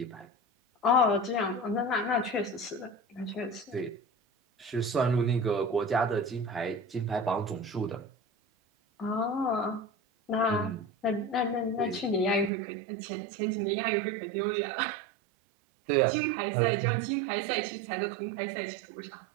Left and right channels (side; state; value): left; drops out; at 12.5 s